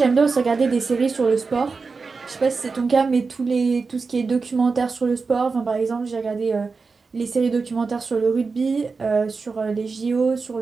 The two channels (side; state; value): left; quieter; 4.5 dB